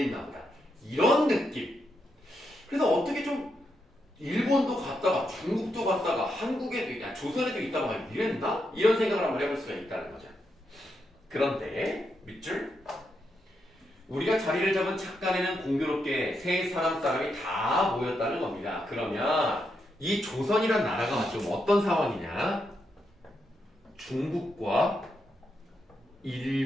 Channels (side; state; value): both; normal; correlation 0.82